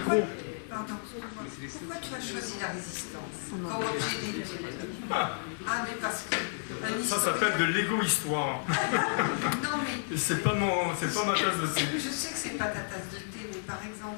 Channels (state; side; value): silent; right; 57 dB below the other